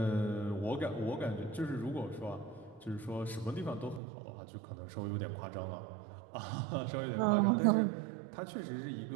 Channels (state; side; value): drops out; left; at 4.0 s